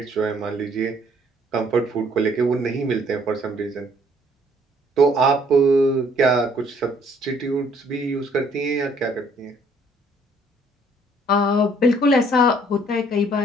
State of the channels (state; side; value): normal; both; correlation 0.62